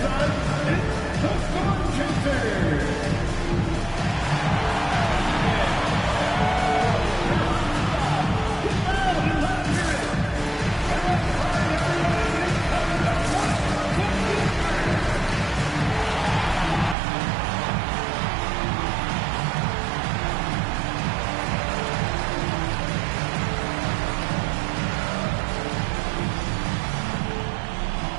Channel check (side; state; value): left; drops out; at 16.9 s